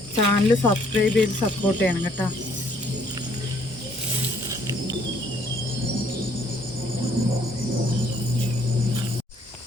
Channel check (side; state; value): both; normal; correlation 0.64